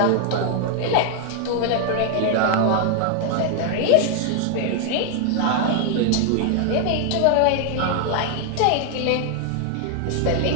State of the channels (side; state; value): both; different; correlation 0.00